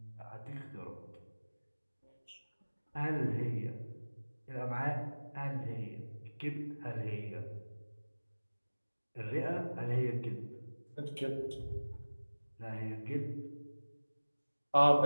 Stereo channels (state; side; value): inverted; both; correlation -1.00